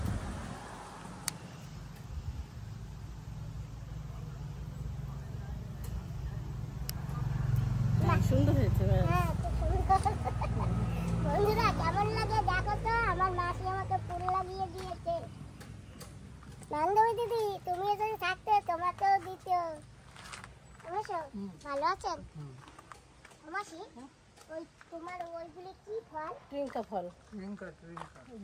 সুন্দর হয়েছে। হ্যাঁ, খুব সুন্দর। বন্ধুরা, কেমন লাগে দেখো তো, আমার মাসি আমাকে ফুল লাগিয়ে দিয়েছে। বান্ধবী দিদি, তুমিও যদি থাকতে তোমাকেও দিত। অবশ্য ভালো আছেন? মাসি, ওই তোমার ওইগুলি কি ফল? ট্রিঙ্কা ফল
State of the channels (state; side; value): identical; both; correlation 1.00